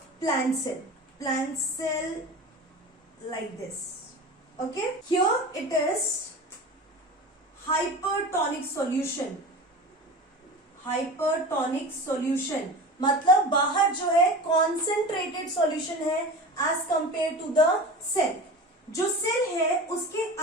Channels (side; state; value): both; normal; correlation 0.32